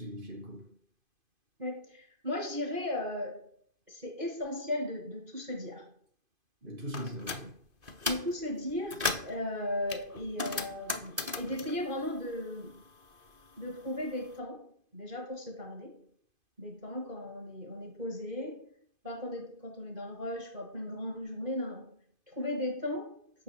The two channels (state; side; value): late; left; 2.5 ms